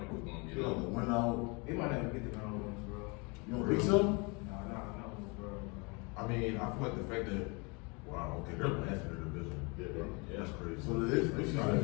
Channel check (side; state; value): right; quieter; 30.2 dB